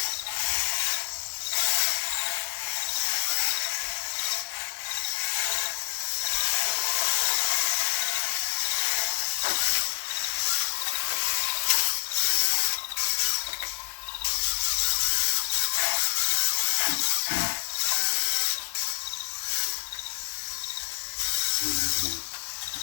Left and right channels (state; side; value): silent; right; 60 dB below the other